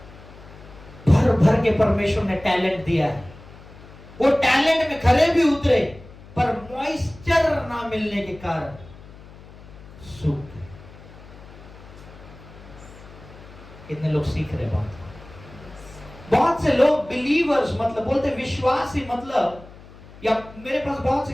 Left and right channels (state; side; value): noise; left; hum, 19 dB below the sound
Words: भर भर के परमेश्वर ने टैलेंट दिया है, वो टैलेंट में खरे भी उतरे, पर मॉइस्चर ना मिलने के कारण सूख गए। कितने लोग सीख रहे बात? बहुत से लोग बिलीवर्स मतलब बोलते विश्वासी, मतलब, या मेरे पास बहुत